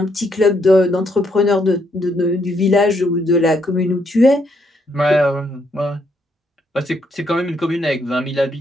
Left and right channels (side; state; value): both; normal; correlation 0.74